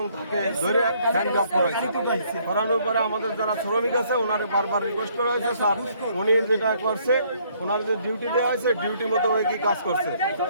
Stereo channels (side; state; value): both; inverted; correlation -0.65